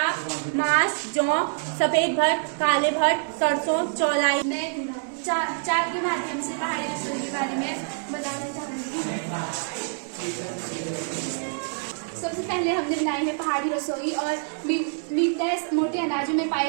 मांस, जौ, सफेद भट्ट, काले भट्ट, सरसों, चौलाई। मैं चार के माध्यम से पहाड़ी रसोई के बारे में बताना चाहूंगी। सबसे पहले हमने बनाई है पहाड़ी रसोई और मीटनेस मोटे अनाजों में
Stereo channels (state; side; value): silent; left; 61 dB below the other